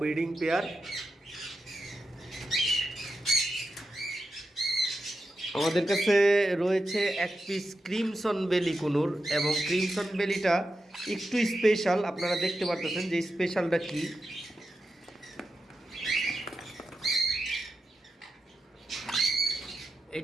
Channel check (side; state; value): both; normal; correlation 0.89